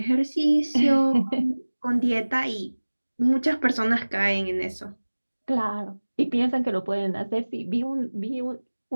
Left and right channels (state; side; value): inverted; both; correlation -1.00